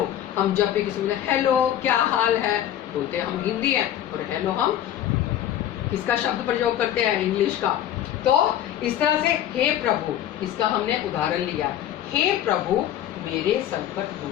हम जब भी किसी में हेलो क्या हाल है बोलते हैं, हम हिंदी हैं, और हेलो हम किसका शब्द प्रयोग करते हैं, इंग्लिश का। तो इस तरह से हे प्रभु, इसका हमने उदाहरण लिया, हे प्रभु मेरे संकट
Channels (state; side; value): quieter; right; 11.4 dB